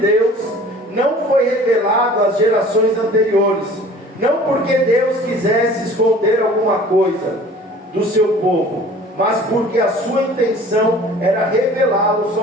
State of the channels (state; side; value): normal; both; correlation 0.47